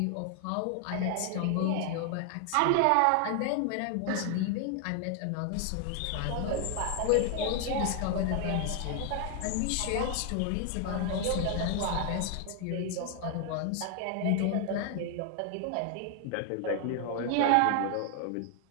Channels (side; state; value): both; different; correlation 0.00